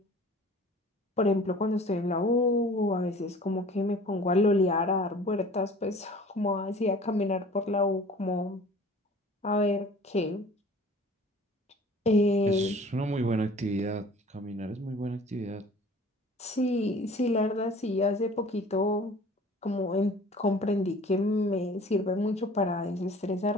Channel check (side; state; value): both; normal; correlation 0.47